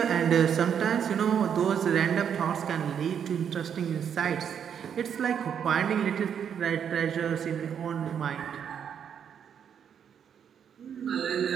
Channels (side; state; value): left; quieter; 8.1 dB